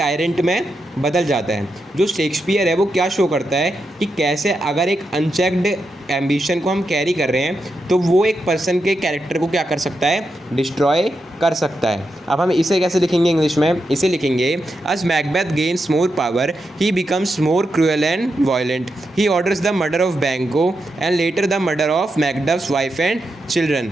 में बदल जाता है। जो शेक्सपियर है वो क्या शो करता है कि कैसे अगर एक अनचेक्ड एम्बिशन को हम कैरी कर रहे हैं तो वो एक पर्सन के कैरेक्टर को क्या कर सकता है? डिस्ट्रॉय कर सकता है। अब हम इसे कैसे लिखेंगे इंग्लिश में? इसे लिखेंगे as Macbeth gains more power, he becomes more cruel and violent. He orders the murder of Banquo and later the murder of Macduff's wife and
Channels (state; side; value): normal; both; correlation 0.86